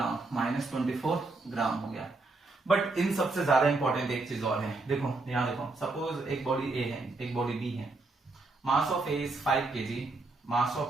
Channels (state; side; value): quieter; left; 3.4 dB